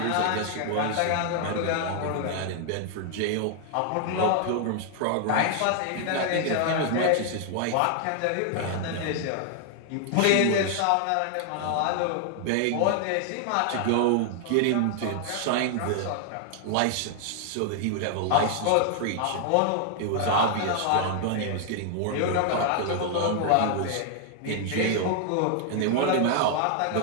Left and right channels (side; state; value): both; different; correlation 0.00